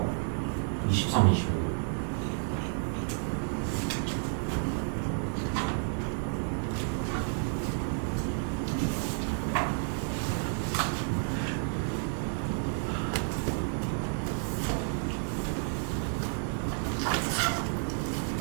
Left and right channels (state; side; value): silent; left; 57 dB below the other